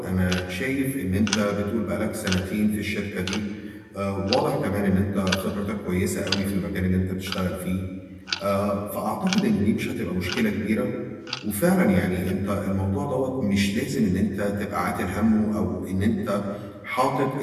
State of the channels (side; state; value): both; identical; correlation 1.00